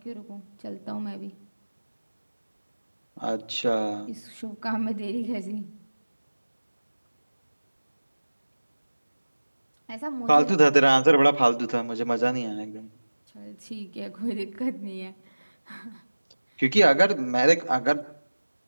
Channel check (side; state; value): both; inverted; correlation -1.00